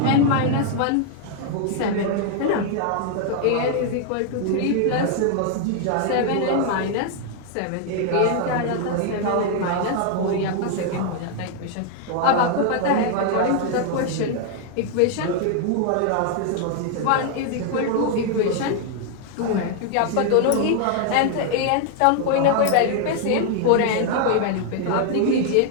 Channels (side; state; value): both; different; correlation 0.00